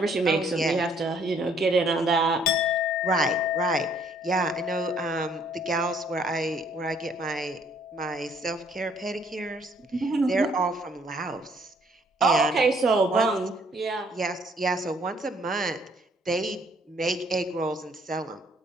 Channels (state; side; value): normal; both; correlation 0.64